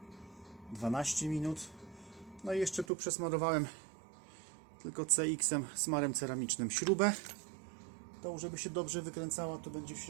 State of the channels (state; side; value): drops out; left; at 2.9 s